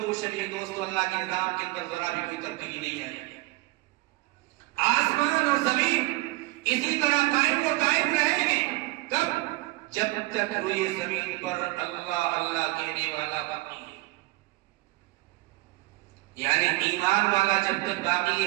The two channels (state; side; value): quieter; left; 20.8 dB